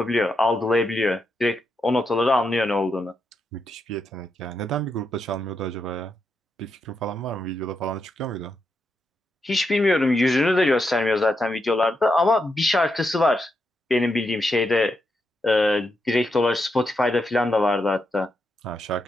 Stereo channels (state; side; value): normal; both; correlation 0.83